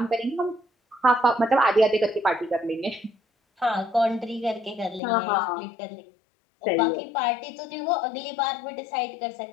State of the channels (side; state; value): right; drops out; at 5.0 s